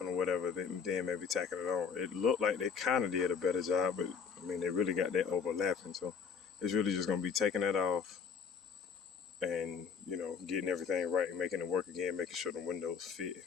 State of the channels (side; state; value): right; quieter; 6.3 dB